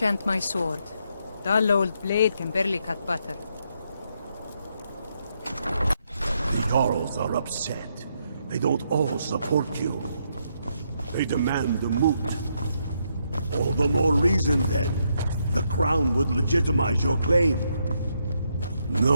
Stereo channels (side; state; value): both; inverted; correlation -0.77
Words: my sword. Dull old blade can barely cut butter. The Jarls are upset. They don't all support you. They demand the moot. All the more reason, then. The crown would legitimize your claim.